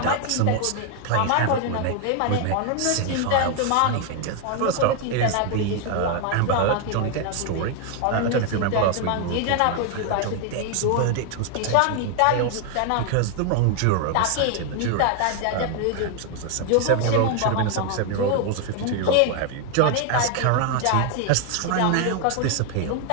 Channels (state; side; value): different; both; correlation 0.00